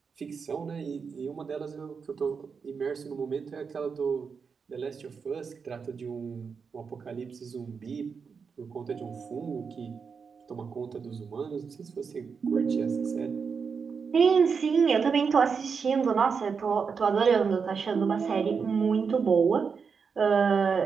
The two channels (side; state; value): left; quieter; 5.7 dB